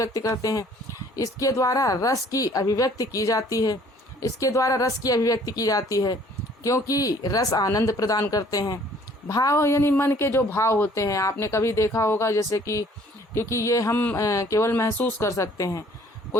करते हैं। इसके द्वारा रस की अभिव्यक्ति की जाती है, इसके द्वारा रस की अभिव्यक्ति की जाती है, क्योंकि रस आनंद प्रदान करते हैं। भाव यानी मन के जो भाव होते हैं, आपने कभी देखा होगा, जैसे कि क्योंकि ये हम केवल महसूस कर सकते हैं।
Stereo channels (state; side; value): normal; both; correlation 0.57